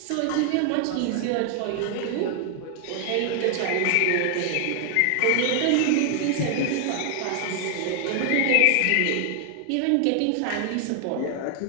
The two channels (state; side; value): different; both; correlation 0.00